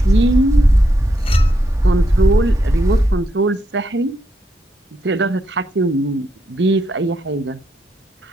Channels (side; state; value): both; normal; correlation 0.80